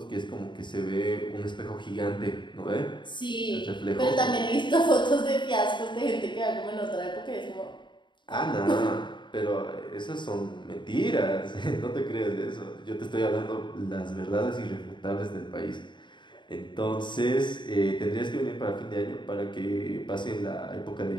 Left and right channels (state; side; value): late; right; 0.23 ms